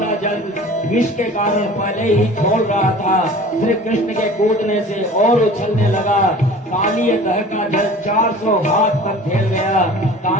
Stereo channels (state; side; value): normal; both; correlation 0.43